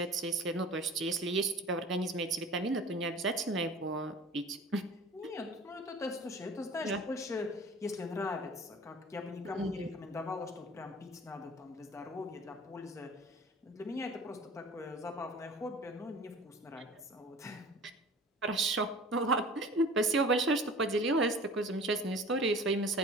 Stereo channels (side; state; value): both; normal; correlation 0.42